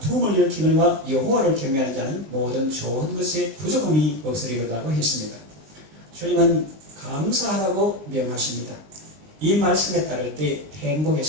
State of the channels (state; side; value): late; left; 20 ms